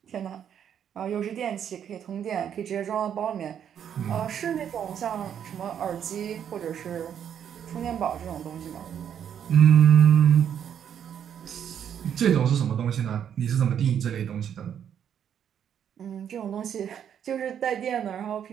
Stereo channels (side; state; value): left; quieter; 8.9 dB